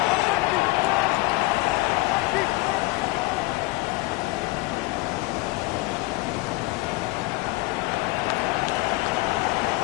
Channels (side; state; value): right; quieter; 21.9 dB